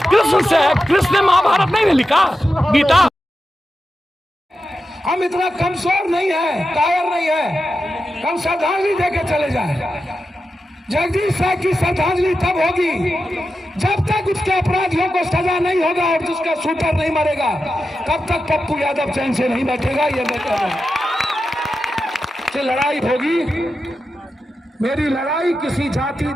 कृष्ण से है। कृष्ण ने महाभारत नहीं लिखा, गीता। हम इतना कमजोर नहीं है, कायर नहीं है, हम श्रद्धांजलि देके चले जाए। जगदीश साहब की श्रद्धांजलि तब होगी जब तक उसके अपराधियों को सजा नहीं होगा और जिसका शूटर नहीं मरेगा, तब तक पप्पू यादव चैन से नहीं बैठेगा। ये लड़ाई होगी। मेरी लड़ाई किसी जाति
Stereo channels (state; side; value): normal; both; correlation 0.90